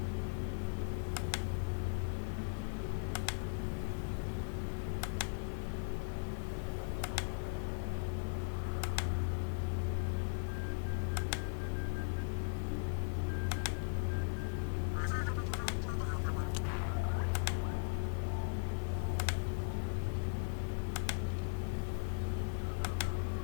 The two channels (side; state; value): right; silent; digital silence